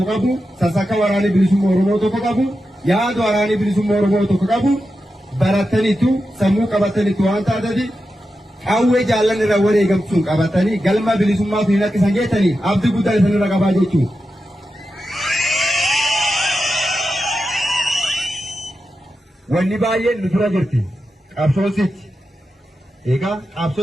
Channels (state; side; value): normal; both; correlation 0.90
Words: qabu, sassakka waraanni bilisummaa Oromoo tokko qabu, yaada waraanni bilisummaa Oromoo tokko qabu barattaniitu sammuu qabataniitu waan taatati qawwee jaallan irra wareegamtuun qabatanii galma bilisummaa fi akka isaan geessanii abdii guddaa isanirra qabaa jechuudha. Wanni baay'een nu dura jirti qabsoositti. Egaa